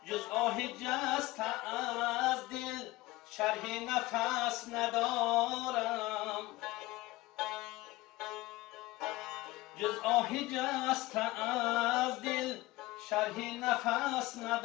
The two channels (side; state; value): right; quieter; 19.2 dB